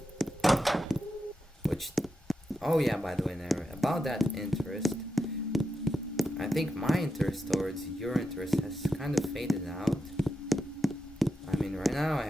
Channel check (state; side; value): normal; both; correlation 0.87